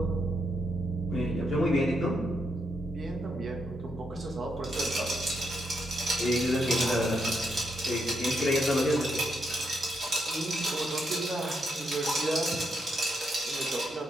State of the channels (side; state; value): both; normal; correlation 0.80